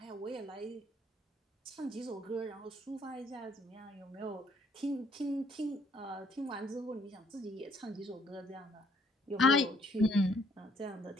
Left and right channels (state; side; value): normal; both; correlation 0.65